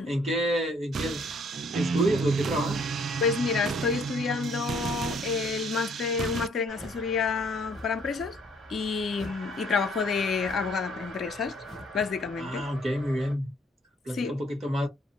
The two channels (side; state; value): both; normal; correlation 0.62